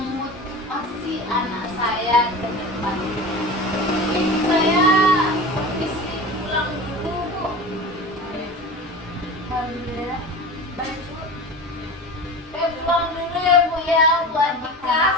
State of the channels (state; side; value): normal; both; correlation 0.33